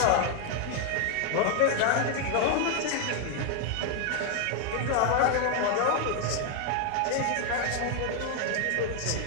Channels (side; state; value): both; different; correlation 0.00